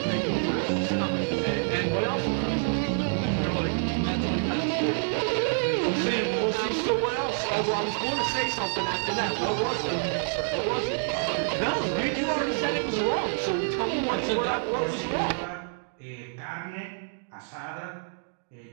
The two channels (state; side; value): silent; left; digital silence